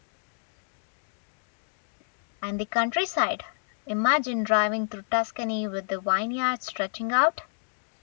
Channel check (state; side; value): silent; right; digital silence